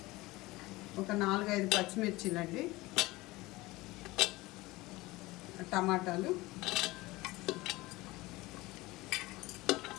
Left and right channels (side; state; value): right; quieter; 20.5 dB